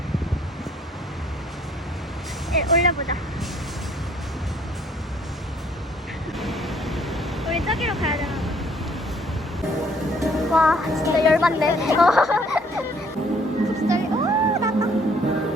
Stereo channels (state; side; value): normal; both; correlation 0.61